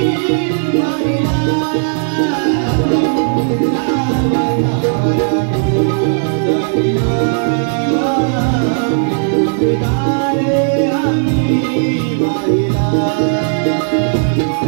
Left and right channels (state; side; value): silent; left; digital silence